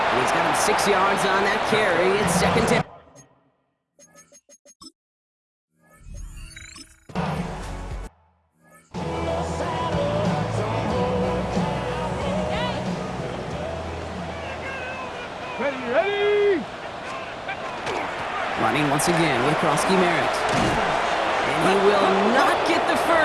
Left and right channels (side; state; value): both; identical; correlation 1.00